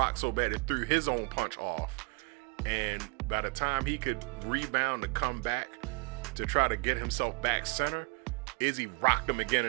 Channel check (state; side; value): quieter; left; 33.4 dB